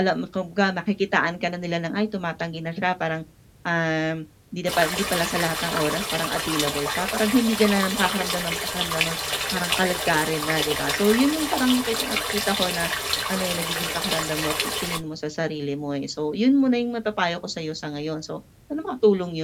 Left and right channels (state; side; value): identical; both; correlation 1.00